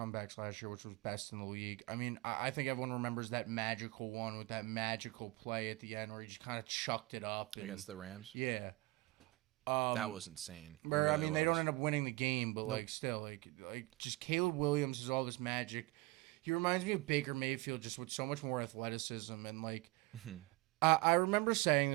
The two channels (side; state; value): left; quieter; 22.3 dB